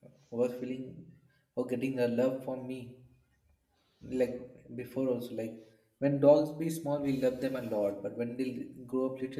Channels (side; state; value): both; identical; correlation 1.00